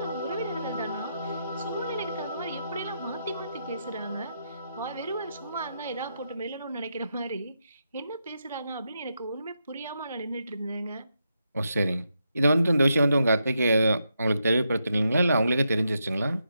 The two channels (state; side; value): inverted; both; correlation -0.83